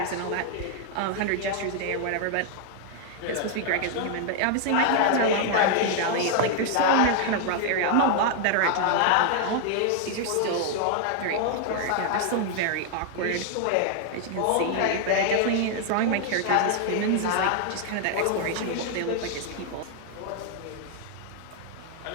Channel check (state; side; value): different; both; correlation 0.00